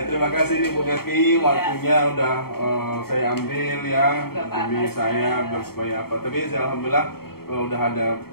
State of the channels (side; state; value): right; late; 0.95 ms